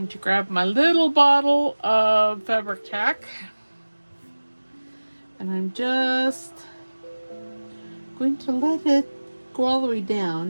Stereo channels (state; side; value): inverted; both; correlation -1.00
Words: to grab my little bottle of fabric tack, and I'm just going to let it go all the way